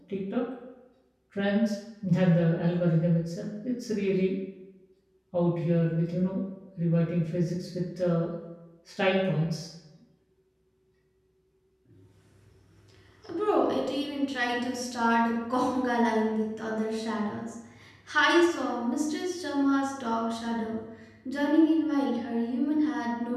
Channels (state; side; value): identical; both; correlation 1.00